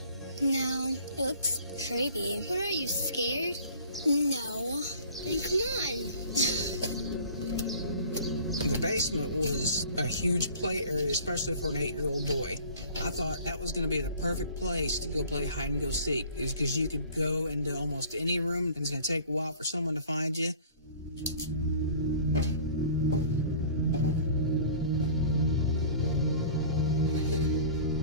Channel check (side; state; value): both; inverted; correlation -0.47